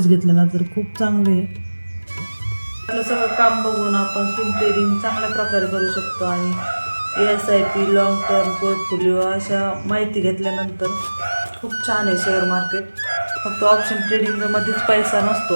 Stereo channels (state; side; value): inverted; both; correlation -1.00